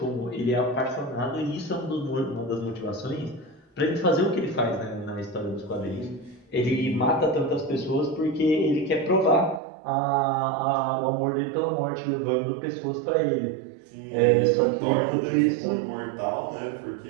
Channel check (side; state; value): left; drops out; at 9.6 s